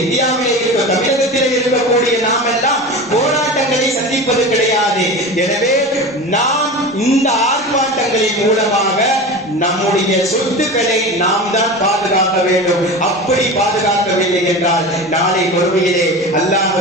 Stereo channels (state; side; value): normal; both; correlation 0.30